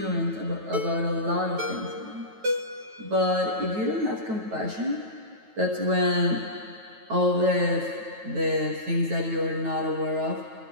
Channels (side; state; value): left; late; 9.2 ms